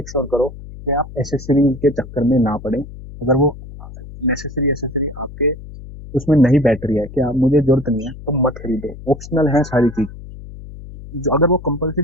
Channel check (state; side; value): noise; left; hum, 14 dB below the sound